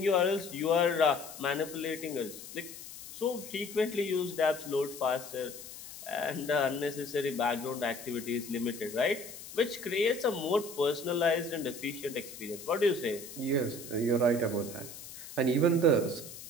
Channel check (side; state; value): left; noise; hiss, 13 dB below the sound